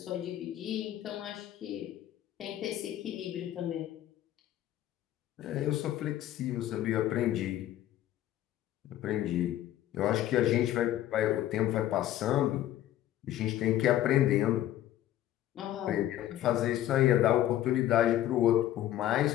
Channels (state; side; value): quieter; right; 13.0 dB